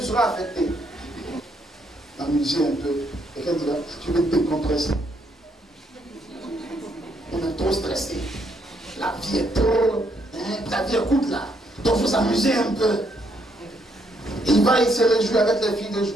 seras affecté. Amuser un peu. Et quelqu'un dira, tu veux te décompresser. On est trop stressé. La vie est trop. La vie est courte là. Donc il faut s'amuser un peu. Il va, il se réjouit avec les filles de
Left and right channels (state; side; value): normal; both; correlation 0.73